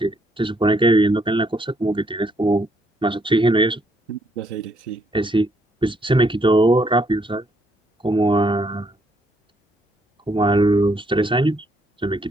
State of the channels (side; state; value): both; normal; correlation 0.72